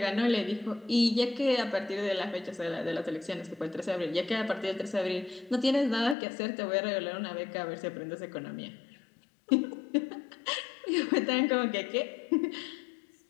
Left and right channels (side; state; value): right; drops out; at 6.2 s